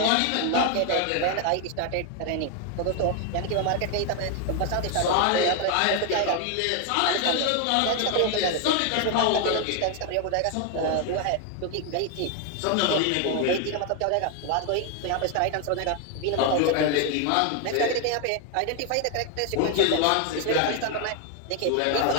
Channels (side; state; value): both; different; correlation 0.01